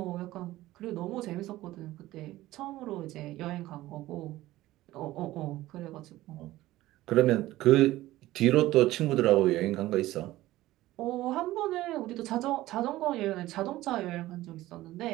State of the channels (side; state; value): left; quieter; 16.4 dB